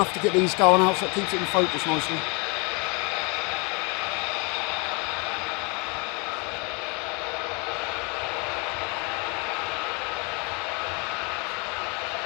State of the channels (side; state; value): right; quieter; 31.0 dB